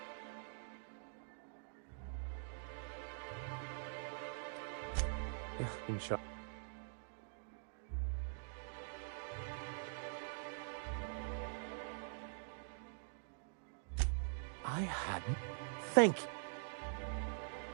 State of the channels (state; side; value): silent; left; digital silence